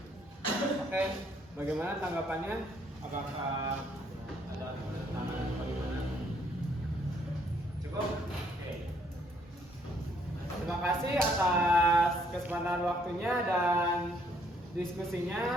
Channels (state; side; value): normal; both; correlation 0.67